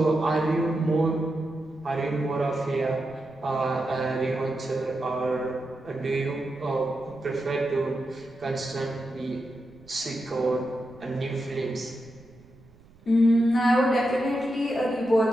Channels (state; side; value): noise; right; rumble, 26 dB below the sound